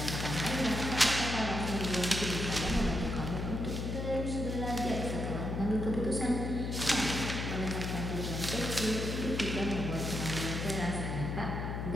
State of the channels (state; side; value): noise; left; hum, 3 dB below the sound